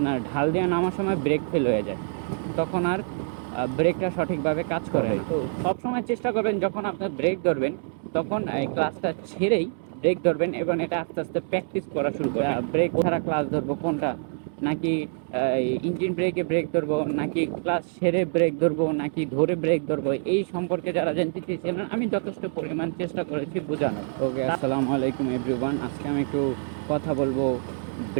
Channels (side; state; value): left; silent; digital silence